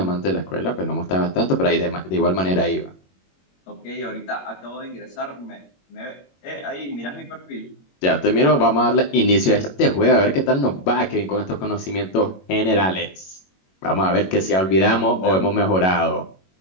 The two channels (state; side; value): late; right; 21 ms